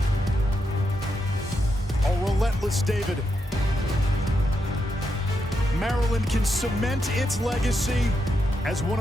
A relentless David. Maryland can cement its legacy as one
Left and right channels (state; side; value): normal; both; correlation 0.84